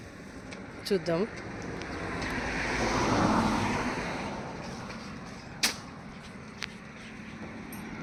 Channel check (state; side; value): identical; both; correlation 1.00